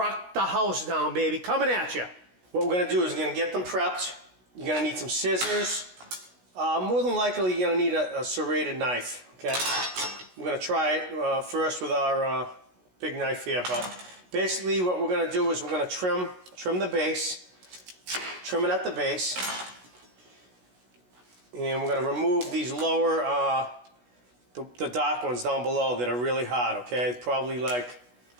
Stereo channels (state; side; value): late; left; 16 ms